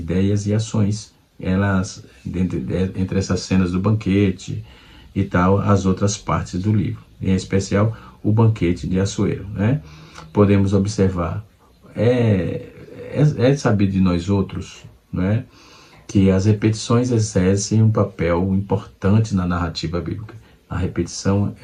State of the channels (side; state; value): both; identical; correlation 1.00